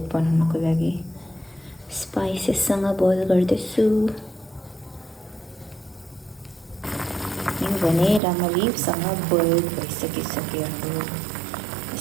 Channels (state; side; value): drops out; left; at 8.2 s